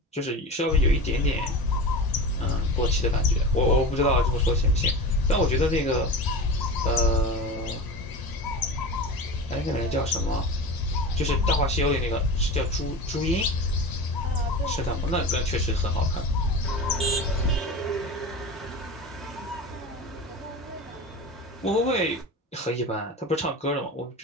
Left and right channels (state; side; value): normal; both; correlation 0.29